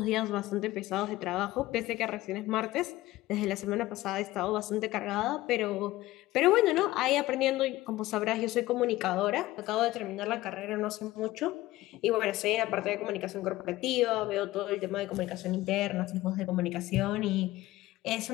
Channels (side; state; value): right; quieter; 17.3 dB